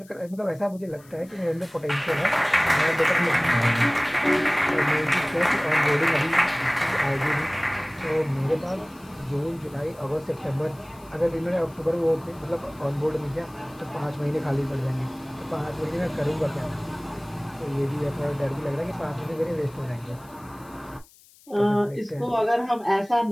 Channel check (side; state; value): left; noise; hiss, 26 dB below the sound